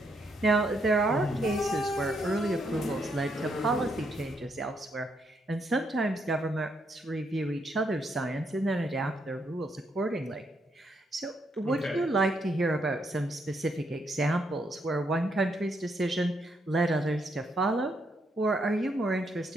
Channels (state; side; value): normal; both; correlation 0.76